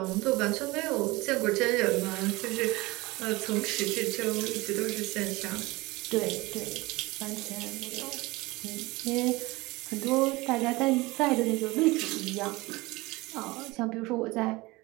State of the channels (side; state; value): left; quieter; 22.1 dB